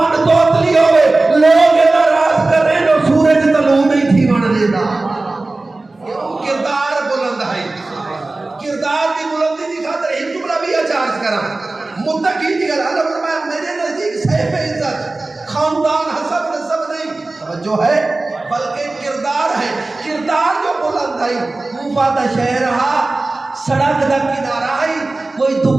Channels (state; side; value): quieter; left; 3.1 dB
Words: توتلی ہوئے لوگ ناراض کر رہے ہیں سورج طلوع نہیں تھی بن دیتا کردار بلند ہے کردار کی بلندی دی خاطر ایک جملہ بھی اچارج کرا متقی دی گل اللہ فرمایا میرے نزدیک صاحب عزت خاندان حسب نسب نہیں توجہ ہے بلکہ کردار ہے کردار جو بلند ہے کوفہ دا شہر رہا سڑک دا کنارہ ہے کوئی